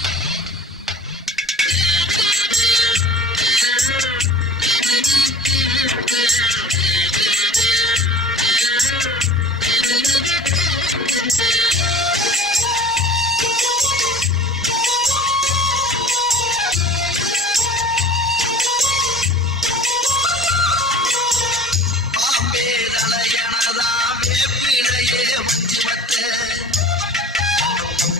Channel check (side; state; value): both; normal; correlation 0.43